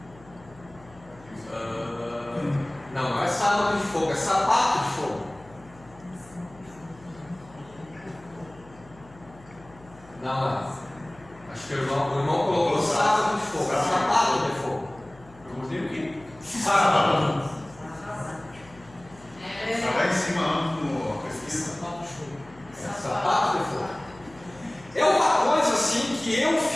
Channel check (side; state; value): left; noise; hum, 23 dB below the sound